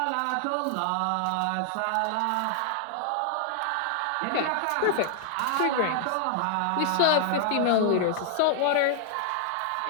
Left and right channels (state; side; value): different; both; correlation 0.00